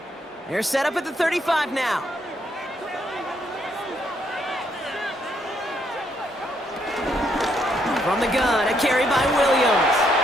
They're set up at the 35 now. From the gun, a carry by Williams.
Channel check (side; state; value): both; normal; correlation 0.73